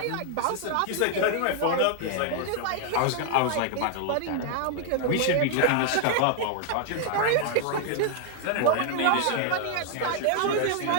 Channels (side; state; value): both; different; correlation 0.00